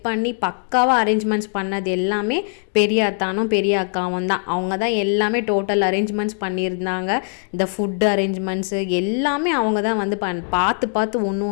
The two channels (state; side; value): silent; right; 55 dB below the other